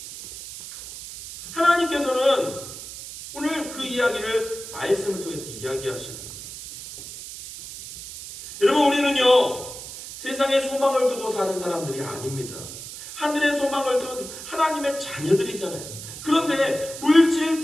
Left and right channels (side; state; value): right; noise; hiss, 11 dB below the sound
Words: 하나님께서는 오늘 그 이야기를 말씀을 통해서 이야기하시는 거예요. 여러분 우리는요 세상에 소망을 두고 사는 사람들이 아닙니다. 하늘의 소망을 둔 하나님의 자녀들이잖아요. 그런데 물질